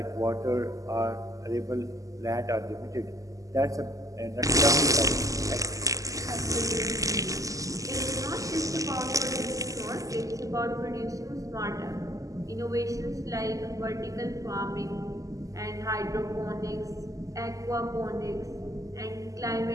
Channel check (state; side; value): late; left; 0.16 ms